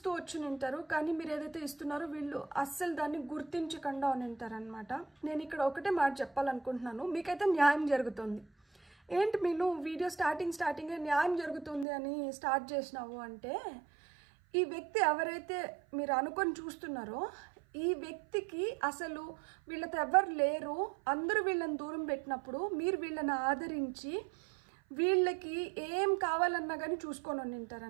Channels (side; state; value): left; drops out; at 11.9 s